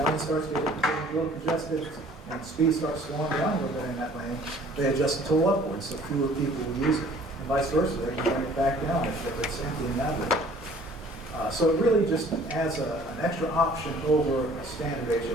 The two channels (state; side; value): normal; both; correlation 0.53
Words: lane starts getting a little congested and speed starts slowing down a little bit in that lane, they adjust the toll upwards so fewer people will use it. And vice versa, they can bring it back down if it's empty in that lane. So it really just adds an extra option over a standard